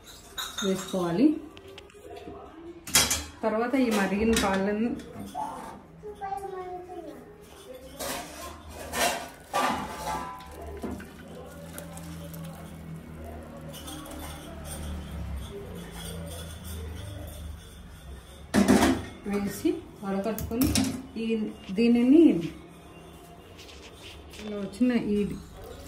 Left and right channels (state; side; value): identical; both; correlation 1.00